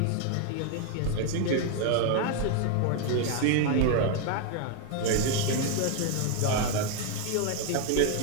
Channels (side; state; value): both; different; correlation 0.01